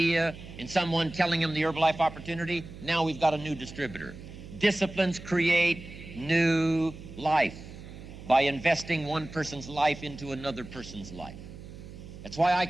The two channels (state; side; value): noise; right; hum, 14 dB below the sound